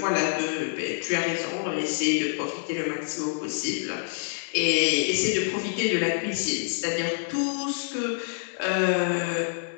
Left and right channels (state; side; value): silent; right; digital silence